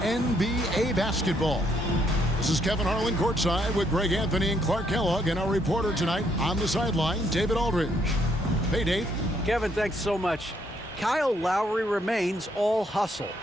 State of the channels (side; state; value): both; normal; correlation 0.72